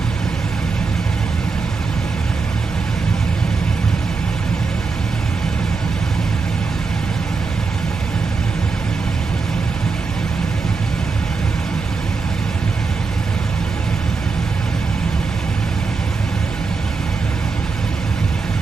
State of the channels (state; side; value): quieter; left; 4.5 dB